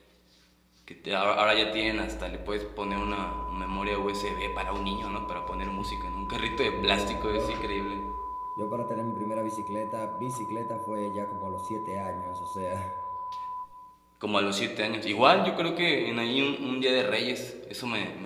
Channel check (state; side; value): identical; both; correlation 1.00